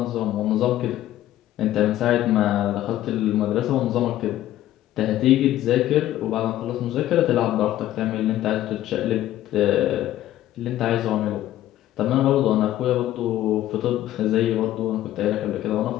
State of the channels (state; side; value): quieter; right; 13.5 dB